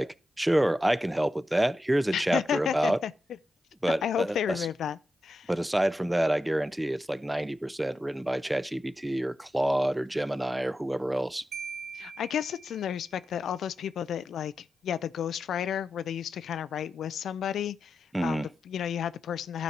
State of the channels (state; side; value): normal; both; correlation 0.89